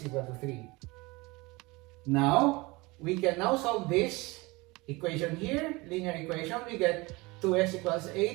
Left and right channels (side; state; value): left; quieter; 23.7 dB